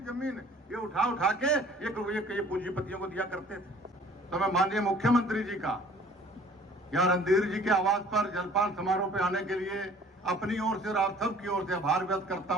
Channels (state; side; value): normal; both; correlation 0.52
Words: जमीन ये उठा के ये पूंजीपतियों को दिया करते थे। तो मैं माननीय मुख्यमंत्री जी का या रणधीर जी के आवास पर जलपान समारोह पे आने के लिए अपनी ओर से और आप सबकी ओर से आभार व्यक्त करता